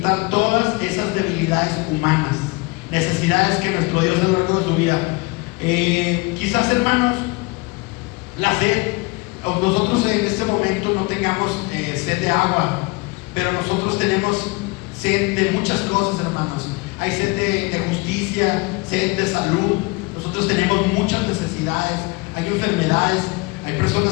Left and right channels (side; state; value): right; quieter; 26.1 dB